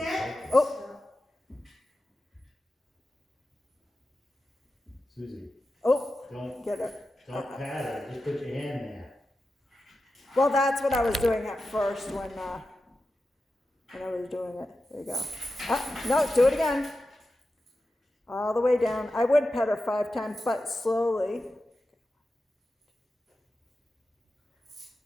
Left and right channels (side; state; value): both; normal; correlation 0.92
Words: Oh, Susie, oh, don't get her. pat her, just put your hand there. Well, that's what I was doing at first when I was doing it. There you go. No, do it again. All the way down. I would pet her 5 times, but slowly.